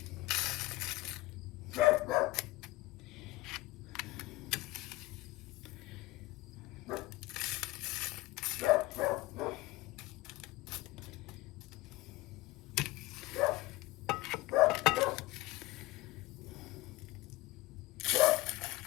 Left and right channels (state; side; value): quieter; right; 19.2 dB